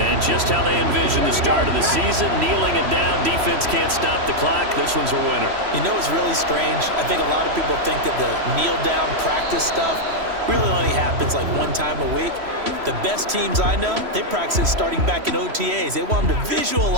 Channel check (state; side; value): late; left; 3.1 ms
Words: just how they envision the start of the season, kneeling it down, defense can't stop the clock. This one's a winner. You know what's really strange? I think a lot of people think that the kneel-down practice stuff really only happens like 1 time a week. The best teams I know, they practice starting back in OTAs. They want them to